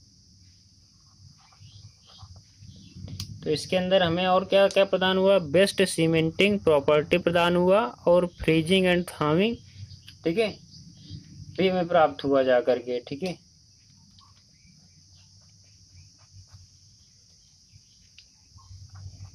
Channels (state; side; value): identical; both; correlation 1.00